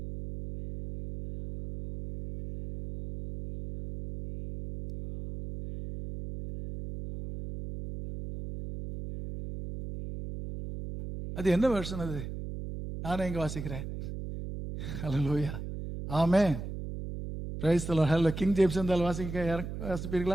அது என்ன வெர்ஷன்? அது நானே இங்க வாசிக்கிறேன். ஹல்லேலூயா, ஆமென், பிரைஸ் தி லார்ட். ஹல்லே, கிங் ஜேம்ஸ் இருந்தால்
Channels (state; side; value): noise; right; hum, 7 dB below the sound